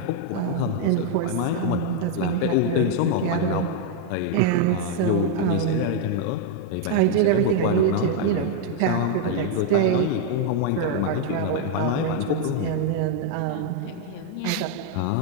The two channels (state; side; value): different; both; correlation 0.00